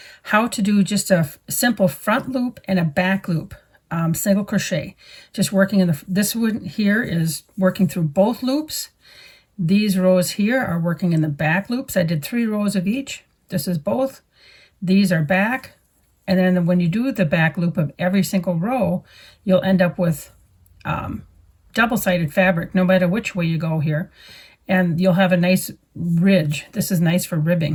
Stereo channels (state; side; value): identical; both; correlation 1.00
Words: how to do just a simple front loop and a back loop single crochet. Just working in this one here is working through both loops. These rows here are working in the back loops. I did 3 rows of each. This is both. These are back. And then when you do the back loop of every single row, you'll end up with double-sided fabric no matter which way you go here. And you'll have a nice ridge. This is nice for